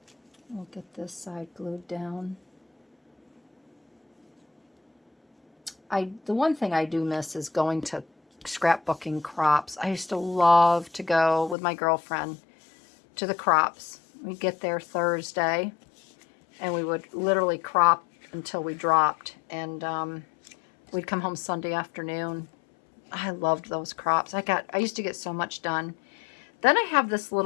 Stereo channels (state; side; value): drops out; right; at 11.6 s